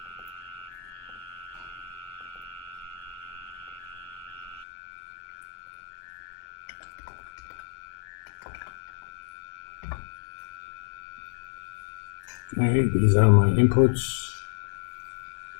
Okay, these are my inputs.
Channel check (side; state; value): right; drops out; at 4.7 s